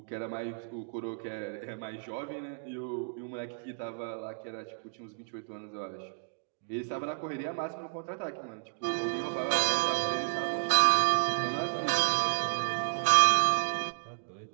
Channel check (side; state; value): left; silent; digital silence